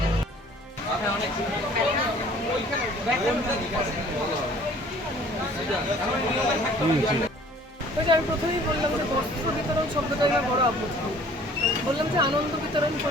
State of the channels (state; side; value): normal; both; correlation 0.53